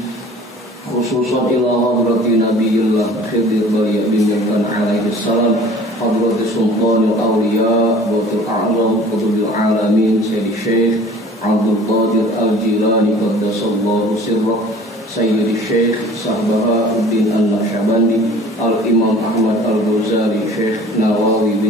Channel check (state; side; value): normal; both; correlation 0.47